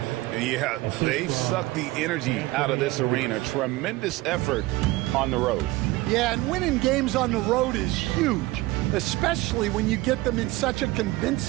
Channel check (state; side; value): quieter; left; 19.5 dB